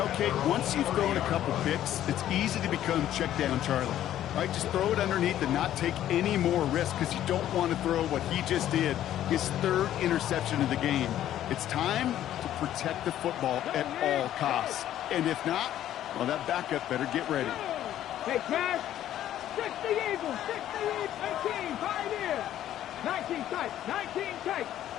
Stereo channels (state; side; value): quieter; right; 12.0 dB